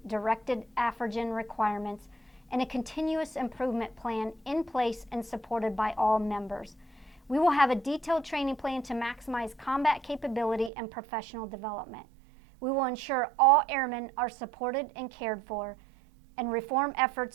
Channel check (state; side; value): drops out; left; at 10.7 s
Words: directed AFRC requirements and a continuous improvement plan in place and supported by all members. We will have a detailed training plan to maximize combat capability and professional development. We will ensure all airmen are supported and cared for, and reform